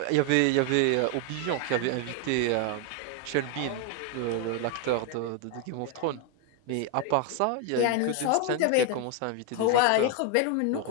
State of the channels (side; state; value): both; different; correlation 0.00